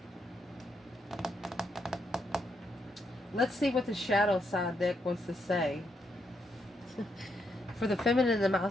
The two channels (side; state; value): both; normal; correlation 0.79